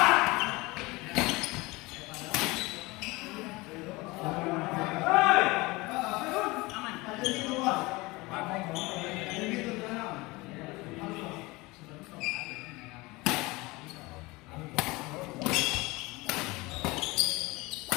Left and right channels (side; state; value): right; quieter; 22.9 dB